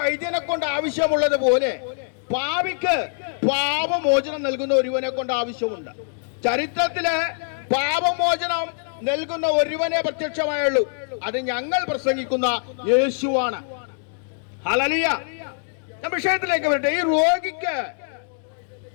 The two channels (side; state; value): right; silent; digital silence